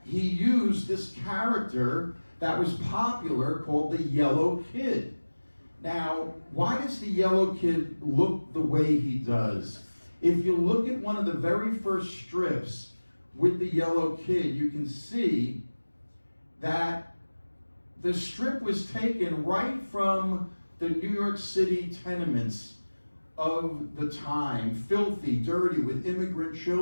he used this character that was popular called the Yellow Kid. Now, why does the Yellow Kid look the way he does? If you look at one of the very first strips with the Yellow Kid, you can see that the strip was taken right from the New York City tenements of the time, filthy, dirty, with immigrant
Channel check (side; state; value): both; inverted; correlation -1.00